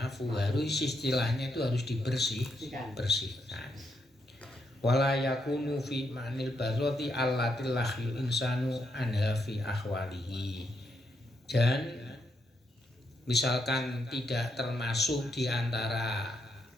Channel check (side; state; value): both; normal; correlation 0.79